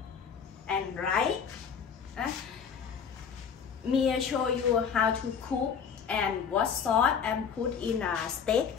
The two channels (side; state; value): right; quieter; 6.9 dB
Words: and rice. Me show you how to cook and what sauce and put in a steak.